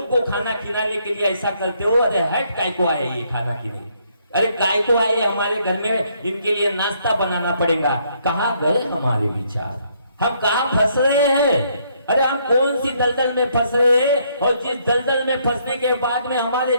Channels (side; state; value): both; inverted; correlation -0.70